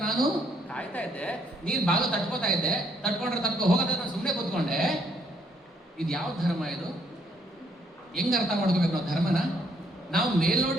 ನಾನು ಕಾಯ್ತಾ ಇದ್ದೆ, ನೀನು ಬಾಗಿಲು ತಟ್ಕೋತಾ ಇದ್ದೆ, ತಟ್ಕೊ ಹೋಗೋದ್ರೆ ನಾನು ಸುಮ್ಮನೆ ಕೂತ್ಕೊಂಡೆ. ಇದು ಯಾವ ಧರ್ಮ ಇದು? ಹೆಂಗ್ ಅರ್ಥ ಮಾಡ್ಕೋಬೇಕು ನಾವು ಧರ್ಮನ? ನಾವು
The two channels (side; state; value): both; normal; correlation 0.69